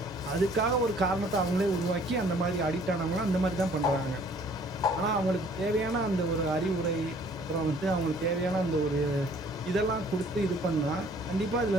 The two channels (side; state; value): both; normal; correlation 0.57